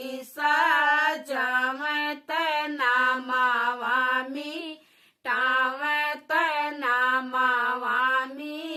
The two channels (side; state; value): both; identical; correlation 1.00